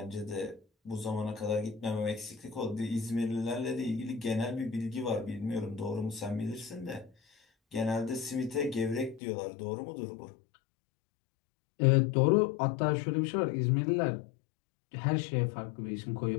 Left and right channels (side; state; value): right; drops out; at 9.2 s